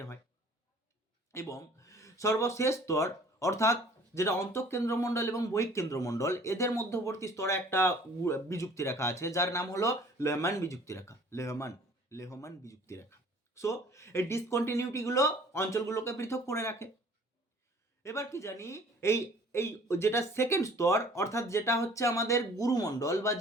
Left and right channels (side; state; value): both; normal; correlation 0.52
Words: হয়। এবং সর্বশেষ স্তর অর্থাৎ যেটা অন্তঃকেন্দ্রমণ্ডল এবং বহিঃকেন্দ্রমণ্ডল, এদের মধ্যবর্তী স্তরে একটা বিযুক্তি রেখা আছে যার নাম হলো লেহমান বিযুক্তি রেখা, লেহমান বিযুক্তি রেখা। সো এই ডিসকন্টিনিউটিগুলো অঞ্চলগুলোকে পৃথক করে রাখে। এবার কি জানি এই এই যেটা সেকেন্ড স্তর অর্থাৎ যেটা হচ্ছে আমাদের গুরুমণ্ডল বা